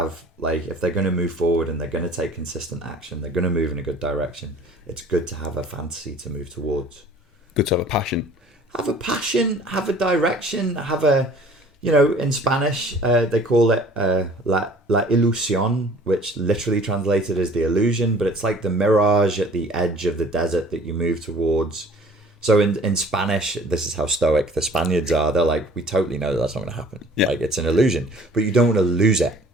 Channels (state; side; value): normal; both; correlation 0.51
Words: like, if they're going to move forward and they're going to take consistent action, they're going to move in a good direction. It's good to have a fantasy to move towards. Good to have a passion. Have a passion. Have a direction. Have a. You know, in Spanish, they call it la ilusión, which literally translated as the illusion, but it's like the mirage at the edge of the desert that you move towards. So in Spanish, this is how stoic the Spaniards are. They're like, we totally know that's not going to happen. Yeah. Like, it's an illusion, but you don't want to lose it.